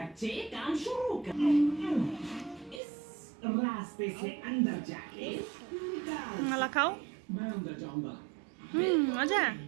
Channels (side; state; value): left; drops out; at 2.8 s